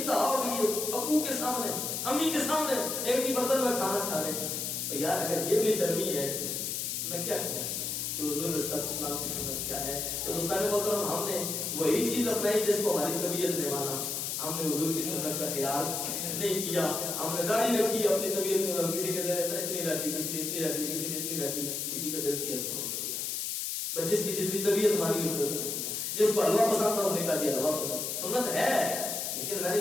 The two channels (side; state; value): left; noise; hiss, 2 dB below the sound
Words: ہوگی ابو کے سامنے امی کے سامنے ایک ہی برتن میں کھانا کھا رہے ہیں. تو یار اگر یہ بے شرمی ہے میں کیا کہوں کہ حضور صلی اللہ علیہ وسلم کی سنت کیا ہے. تو دوستان محترم ہم نے وہی چیز اپنائی جس کو ہماری طبیعت نے مانا. ہم نے حضور کی سنت کا خیال نہیں کیا. ہم نے داڑھی رکھی اپنی طبیعت میں کسی کے دل اتنی رکھ لی کسی نے اتنی رکھ لی کسی نے اتنی رکھ لی کسی کا دل کیا تھوڑی تھوڑی جس کی جتنی طبیعت مانی اس کو کیا. جس کو حلوہ پسند تھا اس نے کہا دیا حلوہ سنت ہے. لیکن میں نے